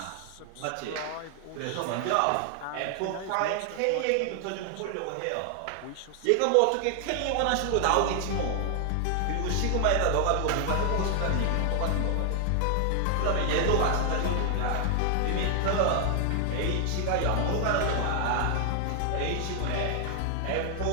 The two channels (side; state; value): both; different; correlation 0.00